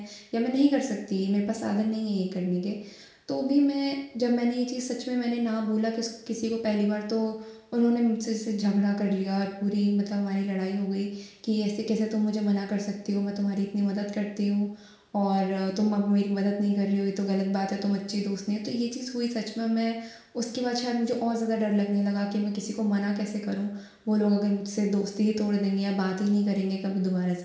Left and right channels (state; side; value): identical; both; correlation 1.00